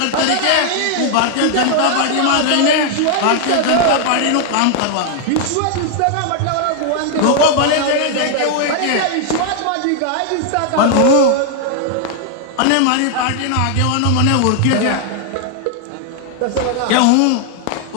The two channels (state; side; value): different; both; correlation 0.00